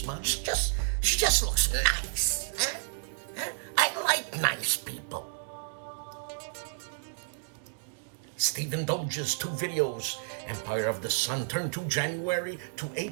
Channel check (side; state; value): left; silent; digital silence